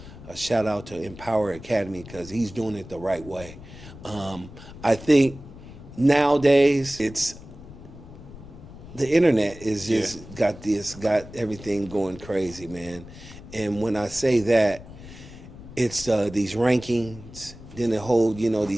shout out to Empower Academy, because he's doing it the right way. I think nowadays the internet is just got everything going crazy, man. And when I say that, it's these rankings, then the whole,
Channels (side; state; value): left; noise; rumble, 16 dB below the sound